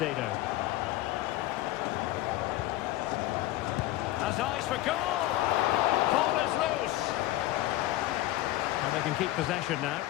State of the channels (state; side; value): quieter; right; 15.8 dB